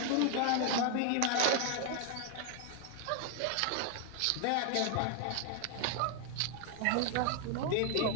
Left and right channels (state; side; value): different; both; correlation 0.01